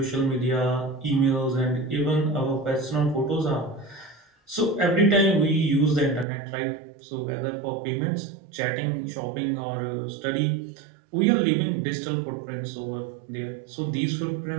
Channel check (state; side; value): drops out; left; at 6.2 s